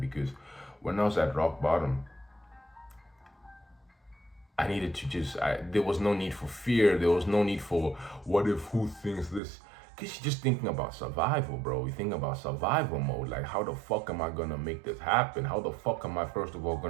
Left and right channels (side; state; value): left; drops out; at 9.4 s